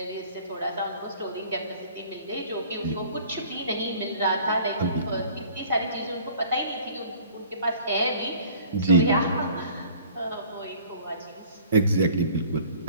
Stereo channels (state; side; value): inverted; both; correlation -0.50